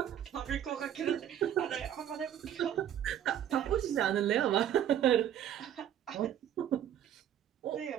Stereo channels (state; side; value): quieter; left; 10.4 dB